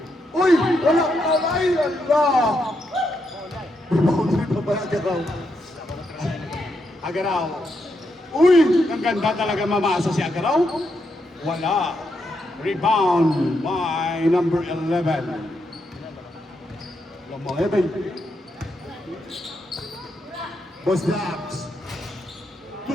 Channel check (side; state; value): both; normal; correlation 0.81